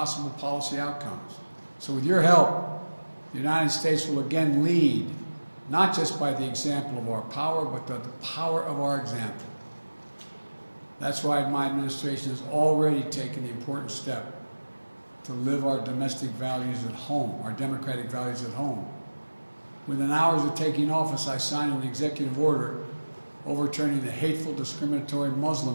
policy outcomes. So with your help, the United States will again lead, not just by the example of our power, but the power of our example. That's why my administration has already taken the important step to live our domestic values at home, our democratic values at home. Within hours of taking office, I signed an executive order overturning the hateful, discriminatory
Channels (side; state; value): both; inverted; correlation -1.00